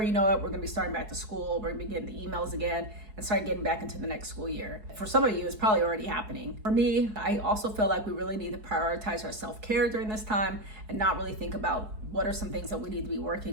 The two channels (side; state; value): left; late; 4.7 ms